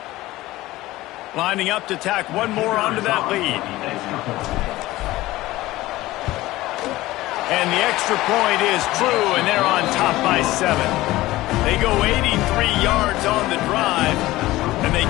Lining up to tack one more onto that lead. And the extra point is true, and they're on top by 7. They go 83 yards on the drive, and they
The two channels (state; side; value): quieter; right; 17.6 dB